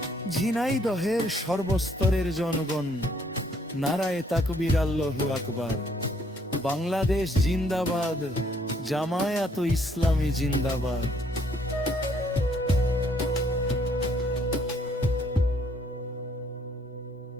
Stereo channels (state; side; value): normal; both; correlation 0.66